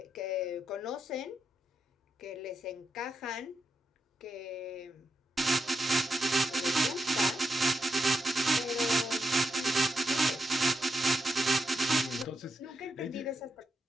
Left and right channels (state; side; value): normal; both; correlation 0.84